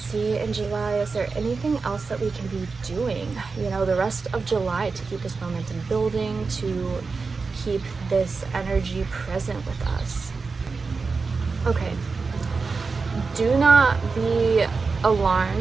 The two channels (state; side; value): quieter; left; 4.5 dB